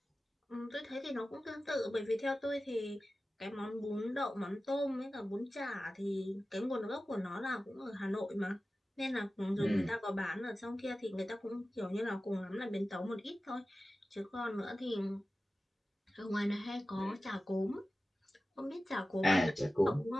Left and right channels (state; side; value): normal; both; correlation 0.95